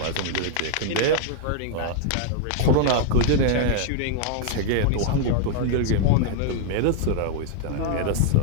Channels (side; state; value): both; different; correlation 0.00